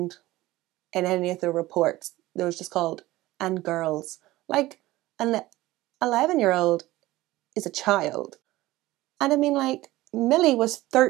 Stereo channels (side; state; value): left; quieter; 17.7 dB